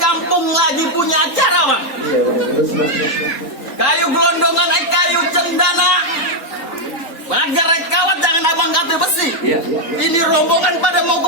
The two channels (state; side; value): late; right; 3.9 ms